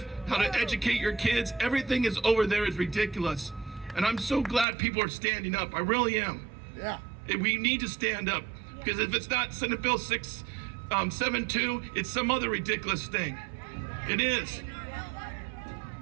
how to educate your kids. Everything is over there is ridiculous. And I'm so glad people are standing up. I really am. Yeah. We need to stand up because if it's not Senate Bill 672, it's some other ridiculous thing. It is.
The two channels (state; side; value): drops out; left; at 4.7 s